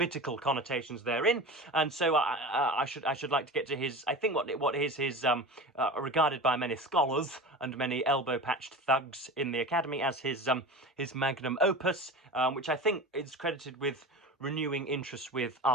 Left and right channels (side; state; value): both; normal; correlation 0.31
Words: connotations therein. And so I should like to get to his, I think what is his regarded by many scholars and many elbow-patched thugs in the academy as his magnum opus, which I think is credited with renewing interest with